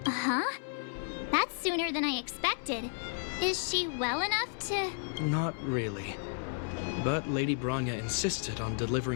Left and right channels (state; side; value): silent; right; 56 dB below the other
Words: Uh-huh. That's sooner than I expected. Is she well enough to... Not really. But Lady Bronya insisted on